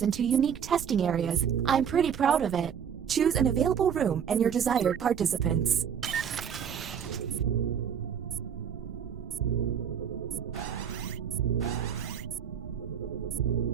into unique testing areas. I'm pretty proud of it. Choose an available room and your desired participants.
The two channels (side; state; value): left; quieter; 8.0 dB